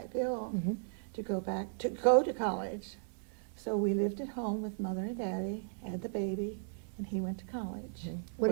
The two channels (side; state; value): left; silent; digital silence